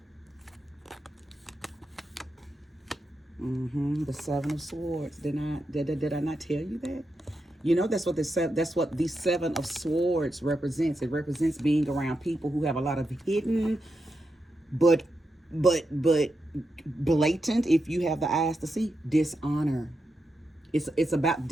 The Seven of Swords. Did I not tell you that? You know, that's what the Seven of Swords represents. It represents being around people who have a lot of hidden, but blatant, if you have the eyes to see, dishonor. It's about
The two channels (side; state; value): both; normal; correlation 0.86